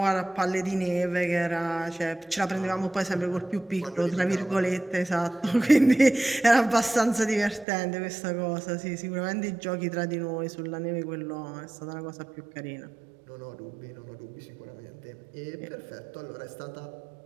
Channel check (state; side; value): drops out; left; at 7.7 s